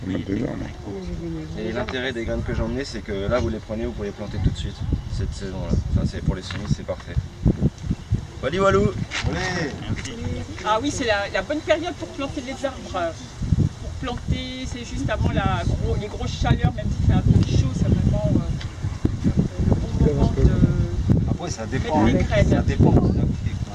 mettre des arbres. Et l'intérêt des graines que j'ai emmenées, c'est que là vous les prenez, vous pouvez les planter tout de suite, cette saison-là. Enfin, c'est pour les semis, c'est parfait. Wally Walou. Ah oui, c'est la bonne période pour planter les arbres. Pour planter, c'est juste avant les grosses chaleurs, même si c'est un peu chaud, c'est vraiment le bon moment de... Après, ça dépend. Mettre les graines. Ça dépend de la boutique.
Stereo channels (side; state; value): both; identical; correlation 1.00